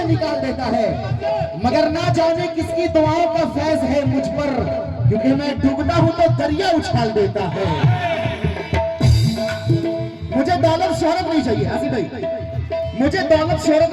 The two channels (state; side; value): identical; both; correlation 1.00